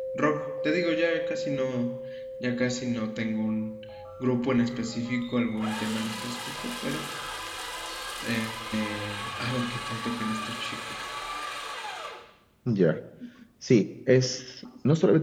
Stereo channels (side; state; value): both; identical; correlation 1.00